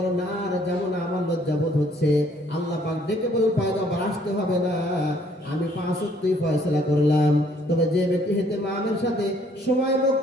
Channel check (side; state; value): both; normal; correlation 0.63